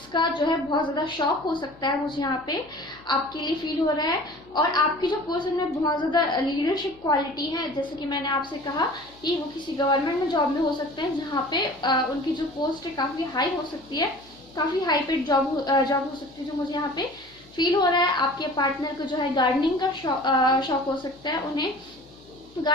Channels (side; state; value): left; noise; hum, 28 dB below the sound